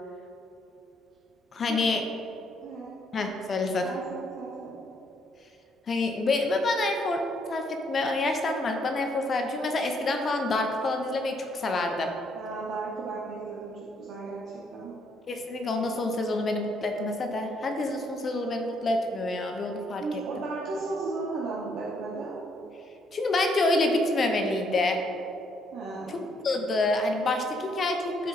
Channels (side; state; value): both; normal; correlation 0.70